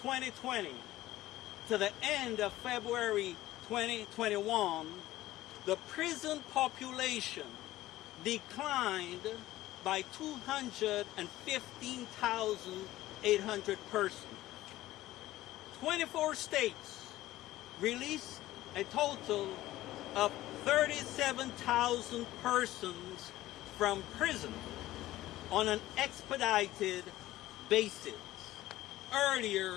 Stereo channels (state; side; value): quieter; right; 15.8 dB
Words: to the end of February 2021, the prison population declined by 215,800 persons. 24 states released a total of 37,000 persons from prison on an expedited basis,